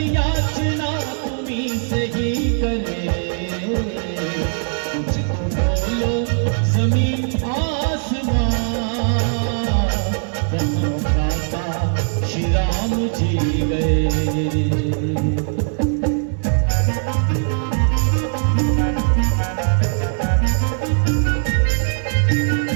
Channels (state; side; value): silent; left; 66 dB below the other